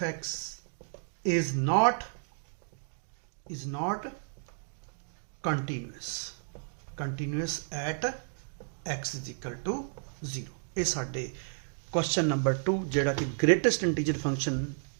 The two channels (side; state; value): left; silent; digital silence